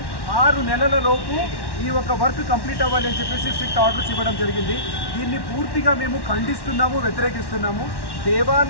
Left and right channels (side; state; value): right; late; 1.1 ms